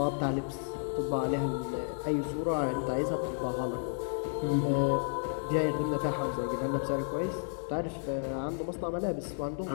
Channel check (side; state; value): right; silent; 56 dB below the other